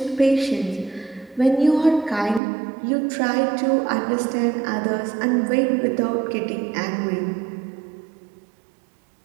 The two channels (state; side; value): drops out; left; at 2.4 s